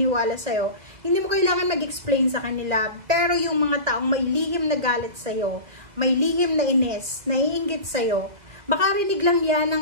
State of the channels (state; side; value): late; left; 2.0 ms